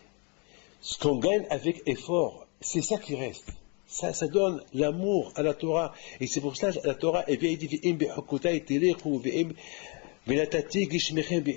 ce qu'on gagne avec effort, c'est ça qui reste. Ça donne l'amour à la Torah. Et c'est pour ça que la Torah, elle vient dire,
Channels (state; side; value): quieter; right; 33.6 dB